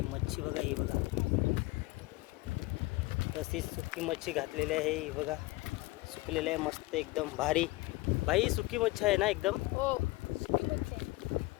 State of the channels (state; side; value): quieter; right; 20.8 dB